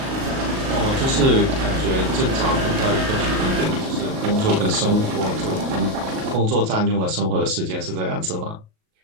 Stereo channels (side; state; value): left; late; 38 ms